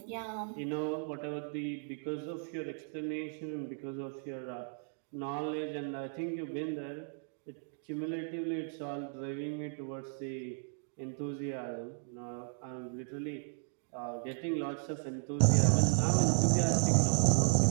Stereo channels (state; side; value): silent; left; digital silence